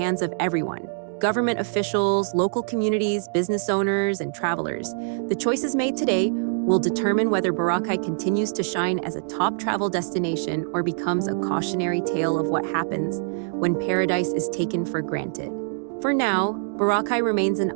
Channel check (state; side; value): silent; left; digital silence